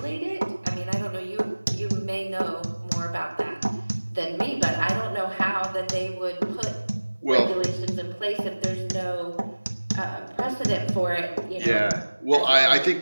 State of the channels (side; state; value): both; inverted; correlation -1.00